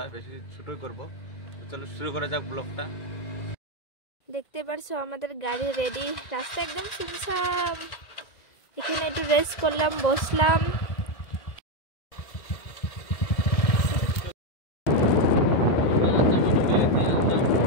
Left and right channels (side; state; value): right; late; 2.0 ms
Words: বেশি ছোটই করব তো চলো শুরু করা যাক ব্লগটা দেখতে পারছো আমাদের গাড়ি রেডি রাস্তা একদম সুনসাম এখানে একটু রেস্ট করলাম বসলাম